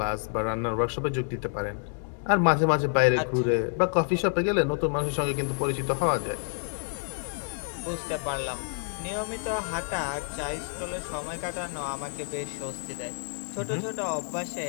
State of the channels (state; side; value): silent; right; 59 dB below the other